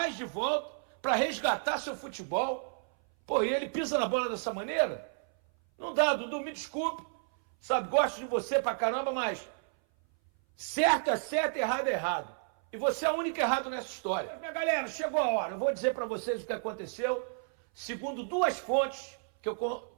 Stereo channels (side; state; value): left; silent; 57 dB below the other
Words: de volta para resgatar seu futebol. Pô, e ele pisa na bola dessa maneira? Não dá, Dudu, me desculpe. Sabe, gosto de você pra caramba, mas certo é certo, errado é errado. E você é o único errado nessa história. Minha galera, chegou a hora. Eu vou dizer para vocês o que aconteceu, segundo 2 fontes que eu